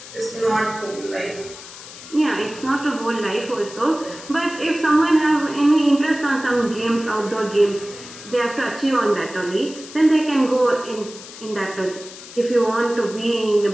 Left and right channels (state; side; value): noise; left; hiss, 15 dB below the sound